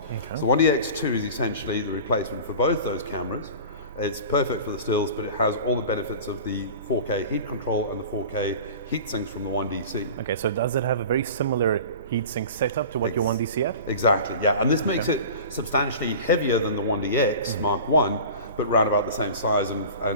Okay. So 1DX2 is essentially the replacement for both those cameras. It's perfect for the stills, but it has all the benefits of the 4K heat control and the 4K heat sinks from the 1DC. Okay, so does it have a very similar heat sink setup to what your 1DC had? Exactly, yeah. And this makes it substantially heavier than the 1DX Mark I, but round about the same size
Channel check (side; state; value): both; inverted; correlation -0.37